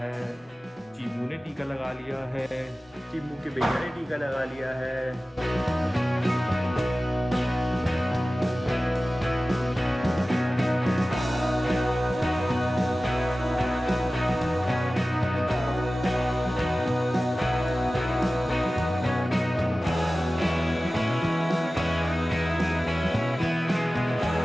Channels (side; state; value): both; normal; correlation 0.96